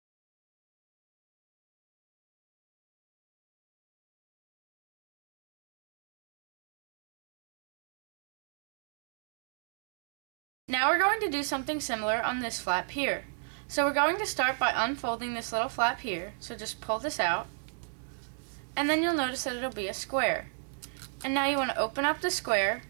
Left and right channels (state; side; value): silent; left; digital silence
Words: Now we're going to do something similar on this flap here. So we're going to start by unfolding this little flap here, so just pull this out. And then you'll notice that it'll be a square. And now you want to open up the square